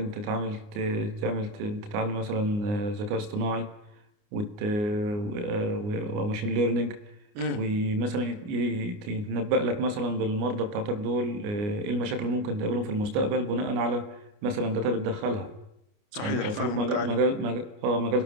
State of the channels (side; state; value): left; late; 29 ms